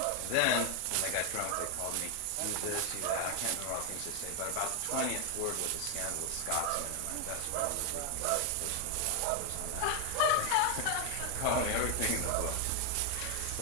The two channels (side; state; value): both; different; correlation 0.00